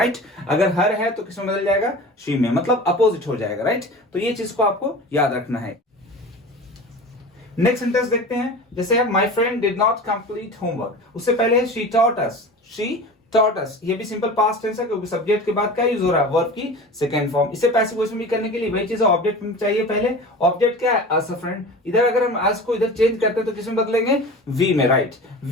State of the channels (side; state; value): both; normal; correlation 0.35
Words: अगर हर है तो किसमें बदल जाएगा? शी में, मतलब अपोजिट हो जाएगा। राइट, तो ये चीज को आपको याद रखना है। नेक्स्ट सेंटेंस देखते हैं, जैसे my friend did not complete homework, उससे पहले है she taught us. She taught अस, ये भी सिंपल पास्ट टेंस है, क्योंकि सब्जेक्ट के बाद क्या यूज हो रहा है? वर्ब की सेकंड फॉर्म। इसे पैसिव वॉइस में भी करने के लिए वही चीज है, ऑब्जेक्ट चाहिए पहले। ऑब्जेक्ट क्या है? अस अ फ्रेंड। इधर अगर हम अस को इधर चेंज करते हैं तो किसमें बदलेंगे? वी में। राइट,